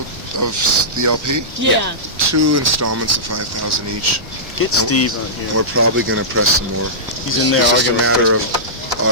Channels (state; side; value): normal; both; correlation -0.17